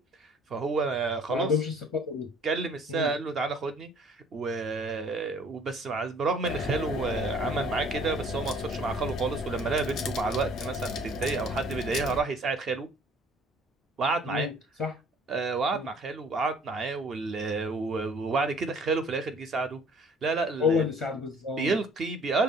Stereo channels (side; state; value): both; normal; correlation 0.55